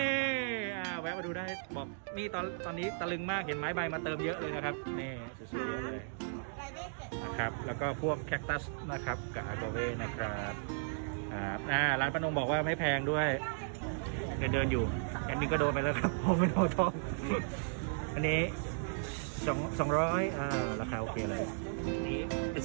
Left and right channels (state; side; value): silent; left; digital silence